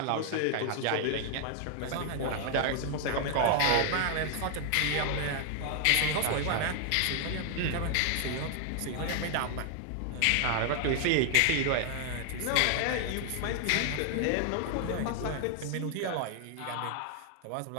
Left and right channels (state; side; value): different; both; correlation 0.00